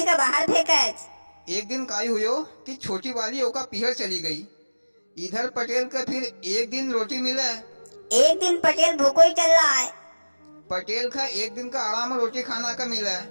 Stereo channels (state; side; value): inverted; both; correlation -1.00